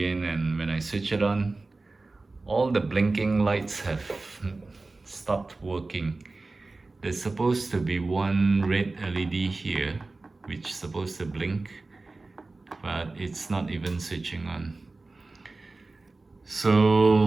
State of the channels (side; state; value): left; quieter; 3.4 dB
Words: and when I switch it on, all the blinking lights have stopped working. There's supposed to be one red LED here, which is supposed to blink, but it's not even switching on.